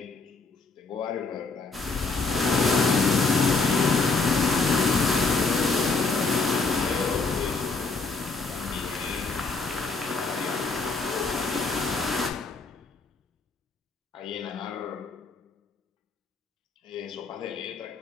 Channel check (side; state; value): right; quieter; 4.0 dB